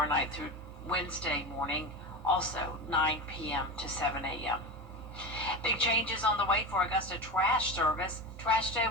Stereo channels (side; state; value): both; normal; correlation 0.24